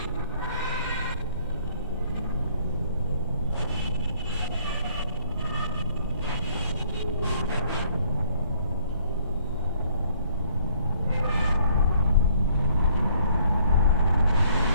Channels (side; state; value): both; inverted; correlation -0.62